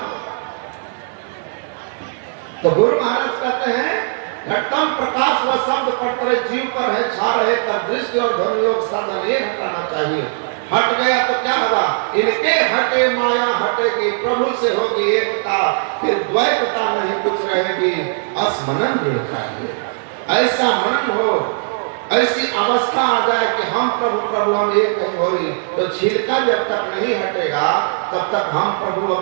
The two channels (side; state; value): left; silent; 67 dB below the other